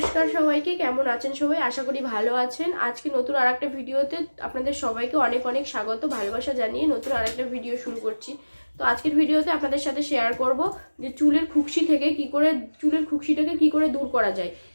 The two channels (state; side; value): inverted; both; correlation -1.00